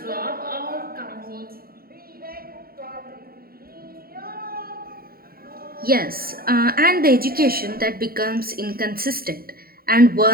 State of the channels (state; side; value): late; left; 0.43 ms